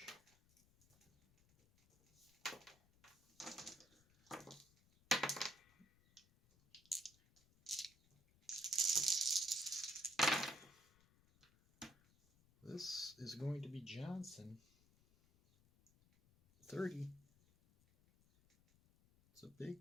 This is going to be Johnson. 30. It's a big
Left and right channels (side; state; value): left; noise; rumble, 30 dB below the sound